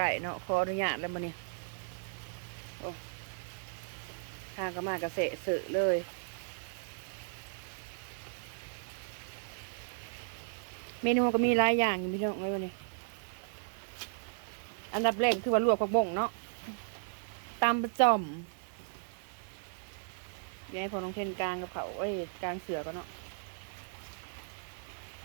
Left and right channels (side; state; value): left; silent; digital silence